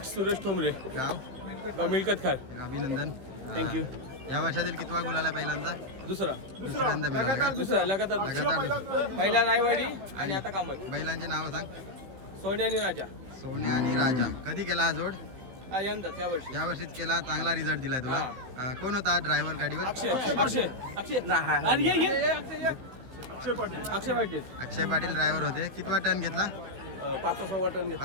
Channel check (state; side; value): late; left; 16 ms